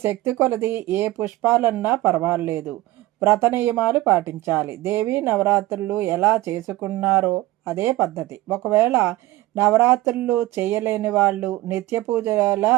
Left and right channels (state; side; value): quieter; left; 17.5 dB